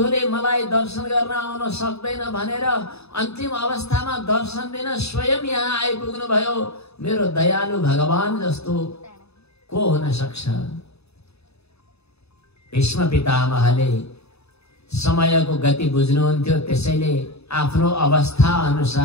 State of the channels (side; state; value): right; late; 0.79 ms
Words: मलाई दर्शन गर्न आउन सक्दैन भनेर अन्तिम अवस्थामा दर्शन दिन स्वयं यहाँ आइपुग्नु भयो। मेरो दयालु भगवान जस्तो को हुन सक्छ? भीष्म पितामहले समयको गति बुझ्नुहुन्थ्यो, त्यसैले आफ्नो अवस्था